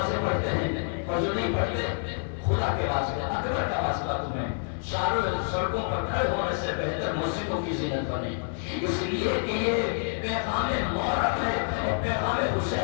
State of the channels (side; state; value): right; silent; digital silence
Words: پڑھتے ہیں اور جو نہیں پڑھتے خدا کے واسطے اکبر کا واسطہ تمہیں چاروں سڑکوں پر کھڑے ہونے سے بہتر مسجدوں کی زینت بنے اس لیے کہ یہ پیغام محرم ہے اور پیغام